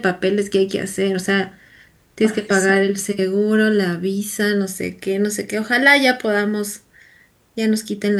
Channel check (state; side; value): identical; both; correlation 1.00